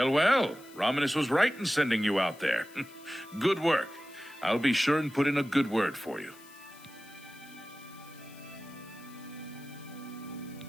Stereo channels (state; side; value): noise; left; hiss, 23 dB below the sound